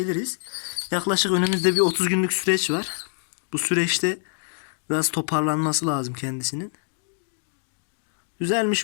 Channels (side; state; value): right; silent; digital silence